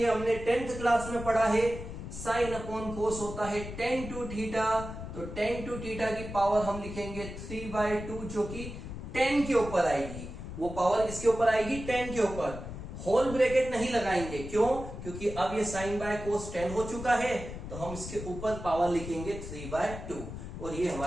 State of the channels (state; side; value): noise; left; rumble, 9 dB below the sound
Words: हमने 10th क्लास में पढ़ा है, साइन अपॉन कोस होता है tan 2 थीटा, तो tan 2 थीटा की पावर हम लिखेंगे 3/2, जो कि 10 के ऊपर आएगी। वो पावर किसके ऊपर आएगी, 10 के ऊपर। होल ब्रैकेट नहीं लगाएंगे, क्यों, क्योंकि अब ये साइन बाय कोस 10 हो चुका है, तो हम इसके ऊपर पावर लिखेंगे 3/2, और ये